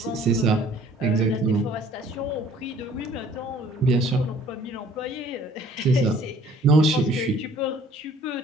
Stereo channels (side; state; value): both; normal; correlation 0.55